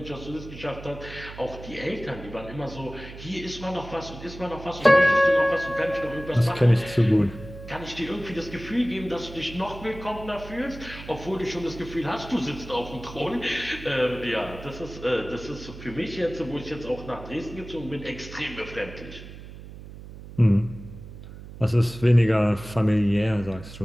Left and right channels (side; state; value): right; noise; hum, 14 dB below the sound